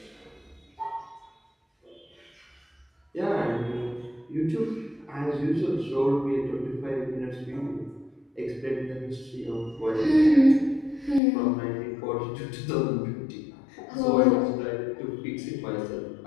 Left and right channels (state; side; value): drops out; right; at 11.2 s